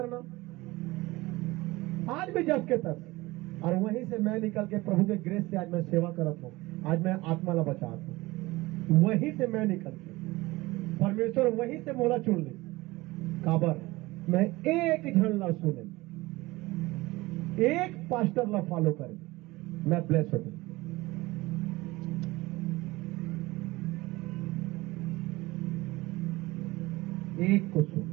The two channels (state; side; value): quieter; left; 20.5 dB